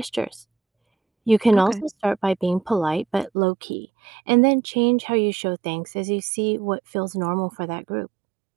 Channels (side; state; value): left; drops out; at 3.3 s